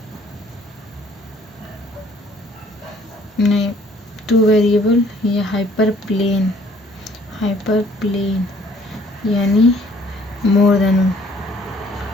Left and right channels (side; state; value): both; normal; correlation 0.59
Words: नहीं, टू वेरिएबल या हाइपर प्लेन यानी मोर